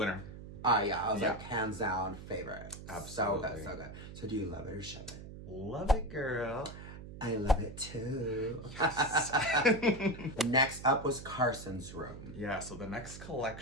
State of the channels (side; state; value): right; noise; hum, 12 dB below the sound